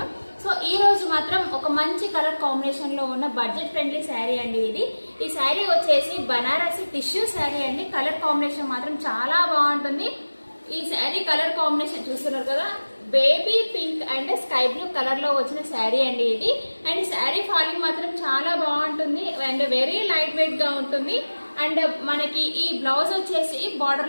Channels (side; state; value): both; inverted; correlation -1.00